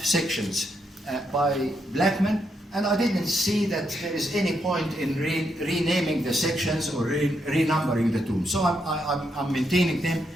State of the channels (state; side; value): normal; both; correlation 0.79